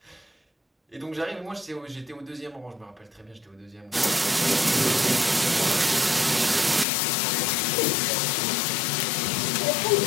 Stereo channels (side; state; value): right; drops out; at 6.9 s